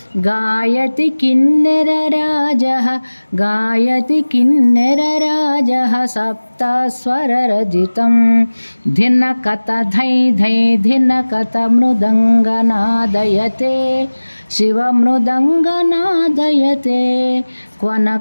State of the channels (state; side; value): inverted; both; correlation -1.00